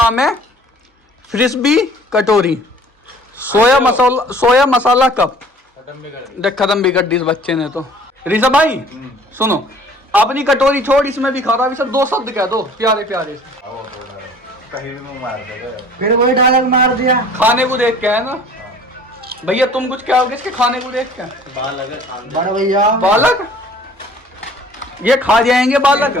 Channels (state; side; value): normal; both; correlation 0.51